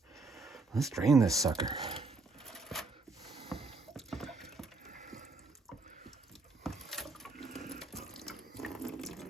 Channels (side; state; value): left; quieter; 3.6 dB